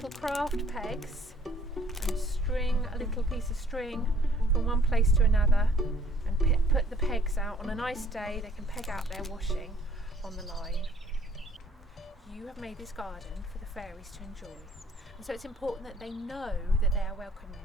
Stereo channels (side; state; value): both; normal; correlation 0.59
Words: craft pegs and string a little piece of string from one place to another and put the pegs out. On a nice day they can peg out their washing on the line. You have made this garden for the fairies to enjoy, and so it's important that they know that they are welcome in